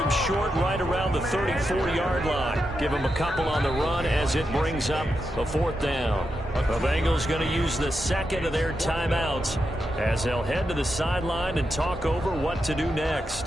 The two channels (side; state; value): both; normal; correlation 0.86